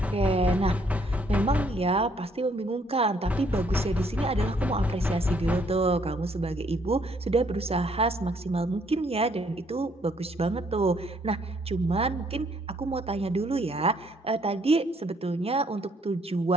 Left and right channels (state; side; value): normal; both; correlation 0.67